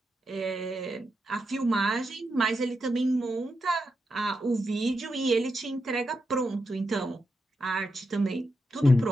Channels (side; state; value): both; normal; correlation 0.86